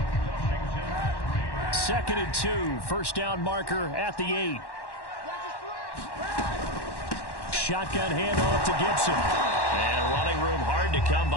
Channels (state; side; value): late; right; 1.1 ms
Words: 2nd and 2, first down marker at the 8. Shotgun handoff to Gibson. And running room hard to come